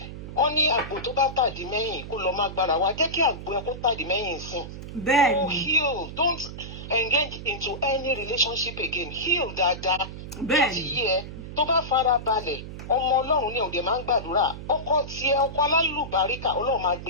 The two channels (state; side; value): noise; right; hum, 10 dB below the sound